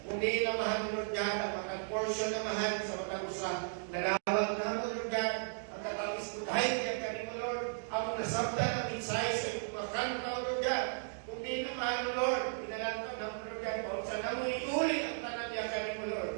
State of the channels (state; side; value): silent; left; digital silence